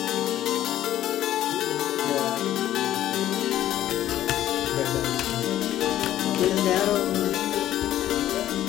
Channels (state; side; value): quieter; right; 12.7 dB